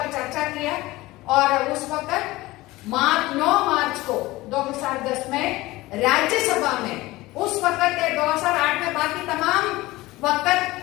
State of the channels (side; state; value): right; quieter; 19.2 dB